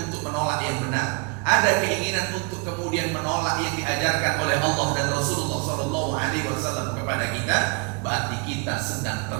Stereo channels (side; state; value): left; quieter; 33.3 dB